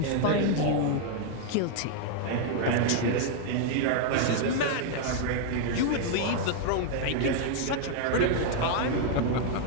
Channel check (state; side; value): different; both; correlation 0.00